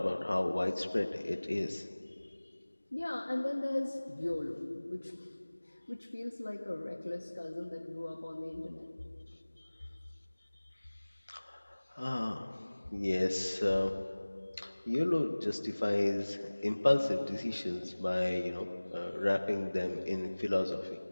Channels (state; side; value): inverted; both; correlation -1.00